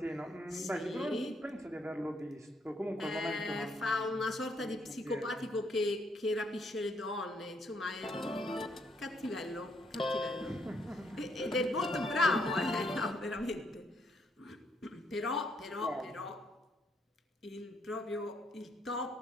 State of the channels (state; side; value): normal; both; correlation 0.72